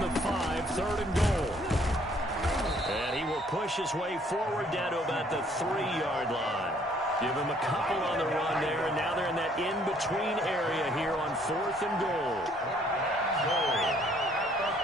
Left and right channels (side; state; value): both; normal; correlation 0.62